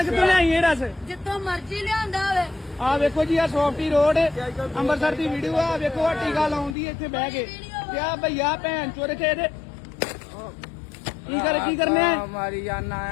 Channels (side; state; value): right; drops out; at 6.8 s